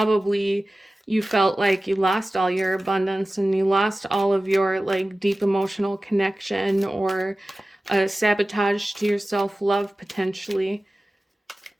you felt like you lost all your abundance and you lost all of your like deep emotional connection, or sabotage to your self-love potentially.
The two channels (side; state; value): both; normal; correlation 0.96